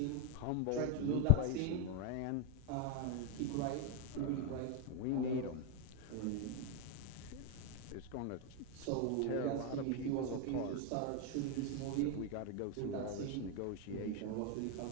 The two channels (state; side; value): different; both; correlation 0.01